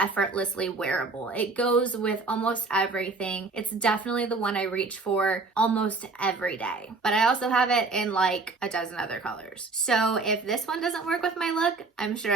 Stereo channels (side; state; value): left; quieter; 3.8 dB